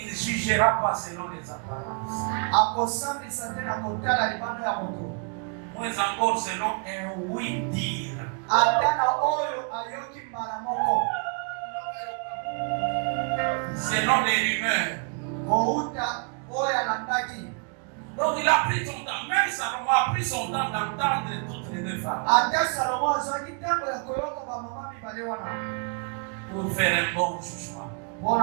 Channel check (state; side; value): quieter; left; 38.2 dB